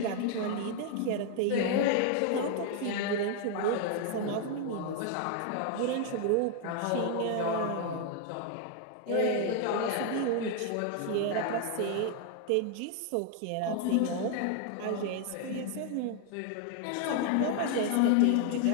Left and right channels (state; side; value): different; both; correlation 0.00